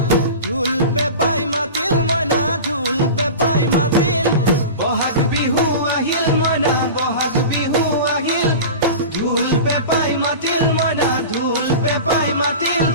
ঢোল পেপাই মাতিল মইনা ঢোল পেপাই মাতিল বহাগ বিহু আহিল মইনা বহাগ বিহু আহিল ঢোল পেপাই মাতিল মইনা ঢোল পেপাই মাতিল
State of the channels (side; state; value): both; inverted; correlation -0.31